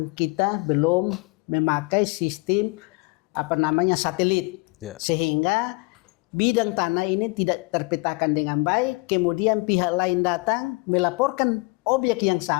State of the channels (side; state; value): right; quieter; 26.8 dB